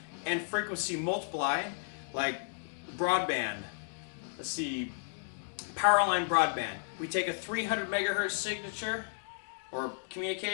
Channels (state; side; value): silent; right; digital silence